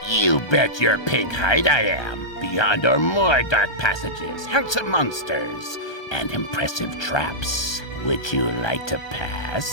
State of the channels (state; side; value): late; right; 1.3 ms